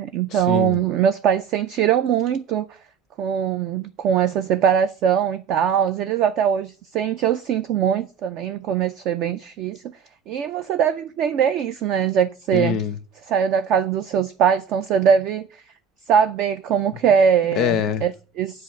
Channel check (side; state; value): left; quieter; 6.6 dB